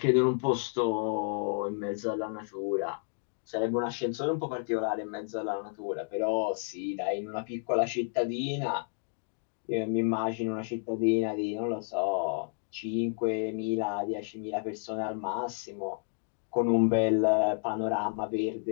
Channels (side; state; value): right; silent; 57 dB below the other